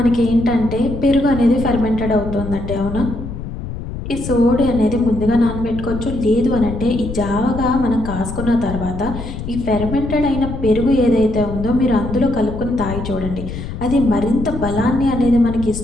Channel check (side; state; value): left; noise; rumble, 8 dB below the sound